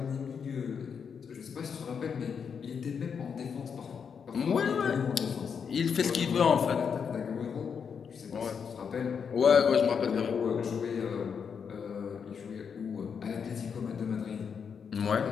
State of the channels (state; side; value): quieter; right; 6.7 dB